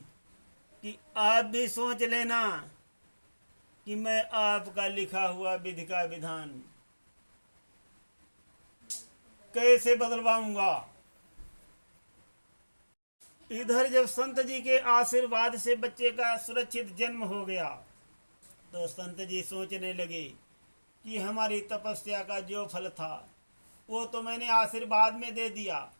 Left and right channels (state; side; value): inverted; both; correlation -1.00